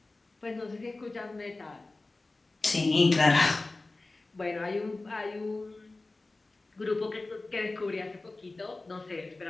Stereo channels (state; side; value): quieter; right; 3.2 dB